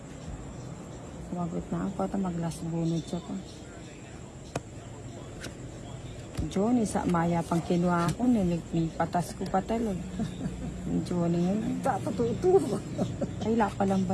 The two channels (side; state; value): both; identical; correlation 1.00